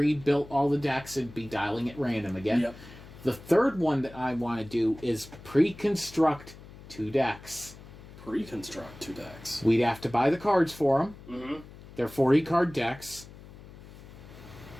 all the decks and be dialing at random again. Yep. The third one that I want to do is pre-construct 2 decks. Pre-construct 2 decks. We'd have to buy the cards for them. Mm-hmm. They're 40-card decks.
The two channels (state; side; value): noise; left; hum, 18 dB below the sound